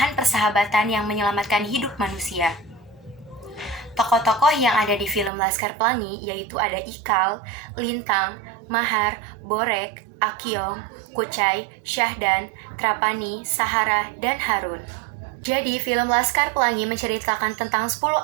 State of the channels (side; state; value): left; drops out; at 5.3 s